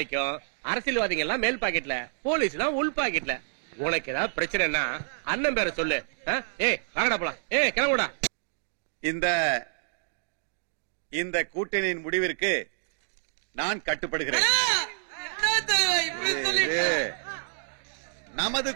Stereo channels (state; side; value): silent; left; digital silence